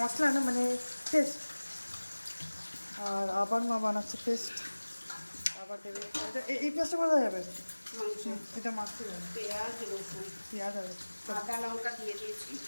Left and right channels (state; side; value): inverted; both; correlation -1.00